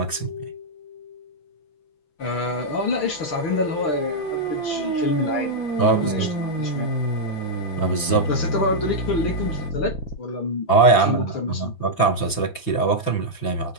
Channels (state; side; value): late; right; 5.9 ms